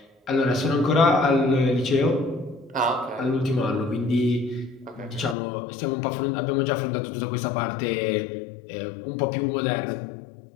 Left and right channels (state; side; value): drops out; right; at 5.4 s